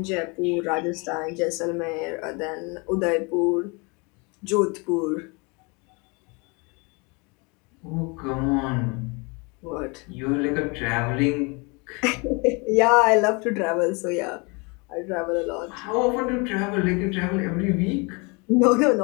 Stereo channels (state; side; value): quieter; right; 30.1 dB